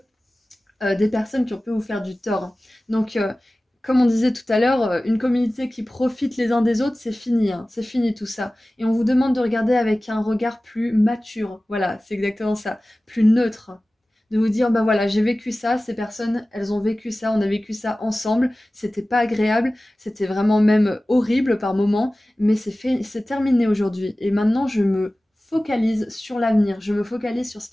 des personnes qui ont pu vous faire du tort. Donc, comme on disait tout à l'heure, une communauté qui profite les uns des autres, c'est fini, hein, c'est fini tout ça. Et on vous demande de regarder avec un regard plus mature, voilà, c'est exactement ça, plus neutre. De vous dire, bah voilà, j'ai vécu ça, ces personnes, elles ont vécu ça, on a vécu ça ensemble, c'était pas agréable, c'était vraiment même horrible par moments, mais c'est terminé aujourd'hui. Et maintenant, je me focalise sur l'avenir, je me focalise sur ce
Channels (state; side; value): normal; both; correlation 0.97